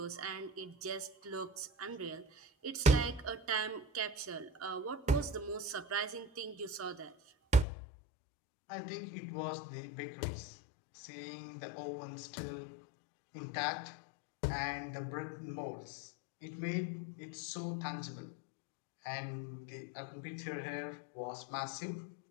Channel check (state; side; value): drops out; right; at 7.7 s